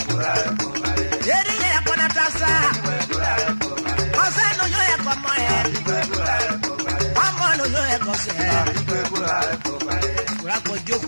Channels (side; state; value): both; inverted; correlation -1.00